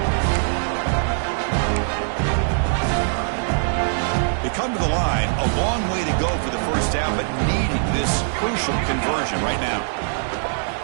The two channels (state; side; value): silent; left; digital silence